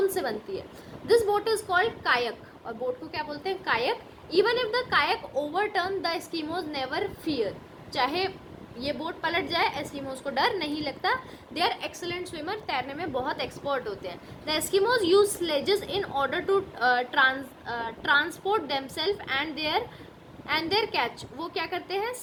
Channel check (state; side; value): identical; both; correlation 1.00